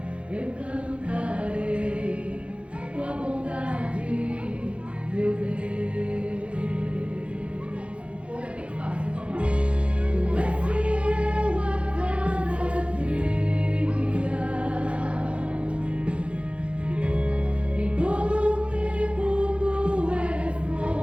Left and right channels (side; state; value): left; late; 0.060 ms